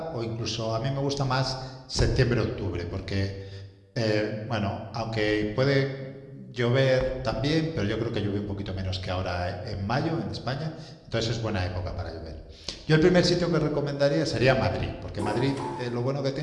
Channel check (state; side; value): identical; both; correlation 1.00